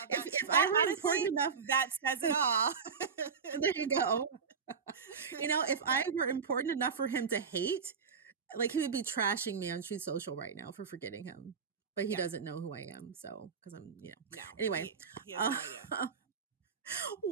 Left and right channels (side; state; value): left; quieter; 5.9 dB